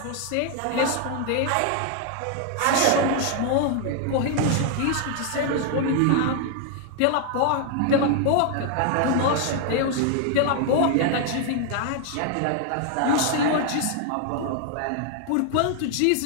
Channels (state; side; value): different; both; correlation 0.00